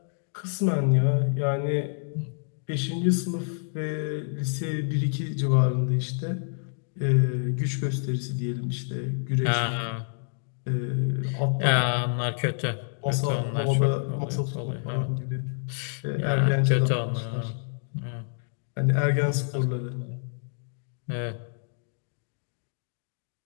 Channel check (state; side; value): silent; right; digital silence